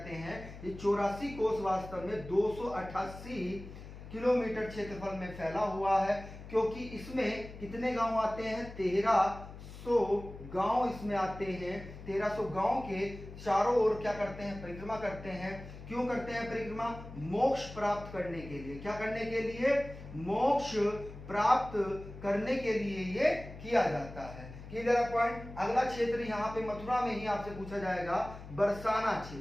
हैं। ये 84 कोस वास्तव में 288 किलोमीटर क्षेत्रफल में फैला हुआ है, क्योंकि इसमें कितने गांव आते हैं? 1300 गांव इसमें आते हैं। 1300 गांव के चारों ओर क्या करते हैं? परिक्रमा करते हैं। क्यों करते हैं परिक्रमा? मोक्ष प्राप्त करने के लिए। क्या करने के लिए? मोक्ष प्राप्त करने के लिए ये किया जाता है। Clear point? अगला क्षेत्र यहाँ पे मथुरा में ही आपसे पूछा जाएगा, बरसाना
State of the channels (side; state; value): left; noise; hum, 14 dB below the sound